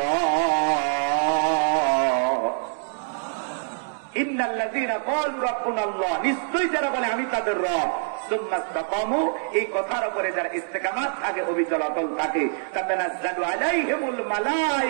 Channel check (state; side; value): silent; left; digital silence